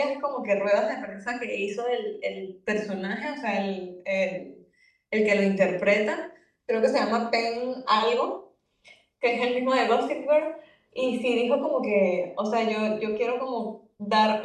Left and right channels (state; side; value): identical; both; correlation 1.00